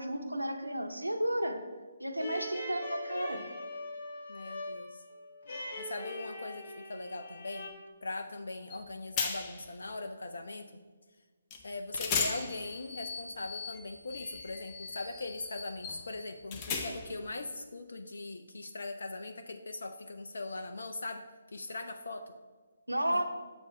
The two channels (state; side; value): inverted; both; correlation -0.81